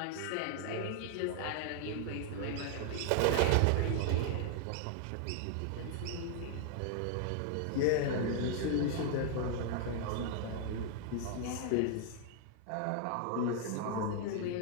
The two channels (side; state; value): both; different; correlation 0.00